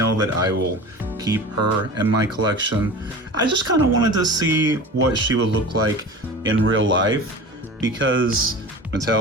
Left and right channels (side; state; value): both; normal; correlation 0.35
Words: that I will keep her in my collection. I just kind of wanted to see what she would look like in real life because